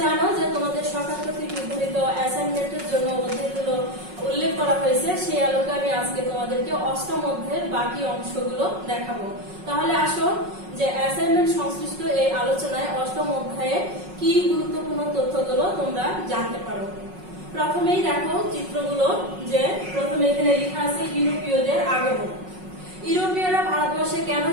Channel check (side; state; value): left; late; 5.4 ms